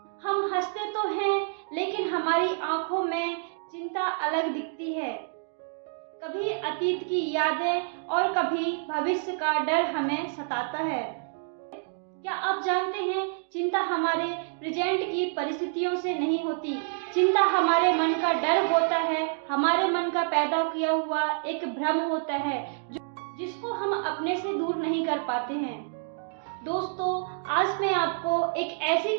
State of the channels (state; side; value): silent; left; digital silence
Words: हम हंसते तो हैं लेकिन हमारी आंखों में चिंता अलग दिखती है। कभी अतीत की यादें और कभी भविष्य का डर हमें सताता है। क्या आप जानते हैं, चिंता हमारे प्रेजेंट की परिस्थितियों से नहीं होती। चिंता हमारे मन का डर होता है, हमारे मन का पैदा किया हुआ एक भ्रम होता है जिसको हम अपने से दूर नहीं कर पाते हैं। दोस्तों, आज मैं आपको एक ऐसी